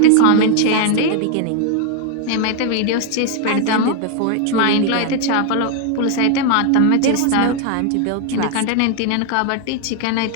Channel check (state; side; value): different; both; correlation 0.00